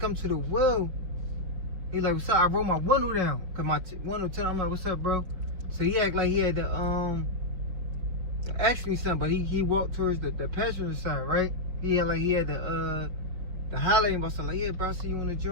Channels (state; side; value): late; left; 5.2 ms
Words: to the wheel, he like, what's up? I roll my window down, cause my window down. I'm like, what's up, bro? So he act like he had to ask me something, but he walked towards the passenger side, right? He had the highlighting about something. Like, yeah, bro, I see you on the